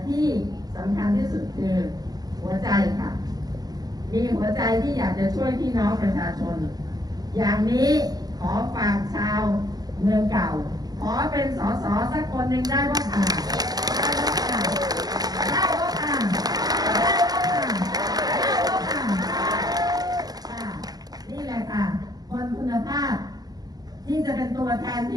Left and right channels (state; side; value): late; left; 0.19 ms